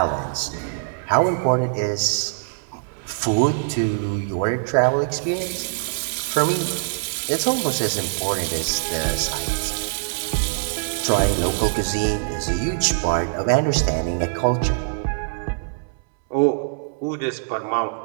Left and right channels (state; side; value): silent; left; 63 dB below the other